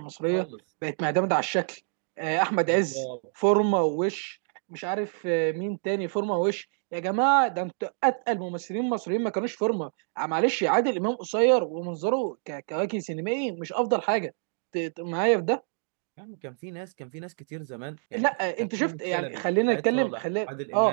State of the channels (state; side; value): silent; left; digital silence